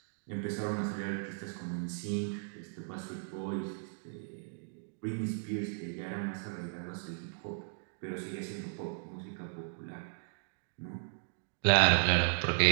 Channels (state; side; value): silent; left; digital silence